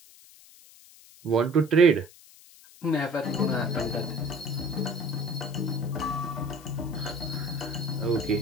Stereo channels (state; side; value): noise; left; hiss, 23 dB below the sound